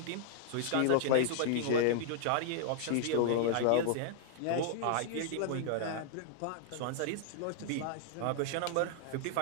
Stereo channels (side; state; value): both; different; correlation 0.00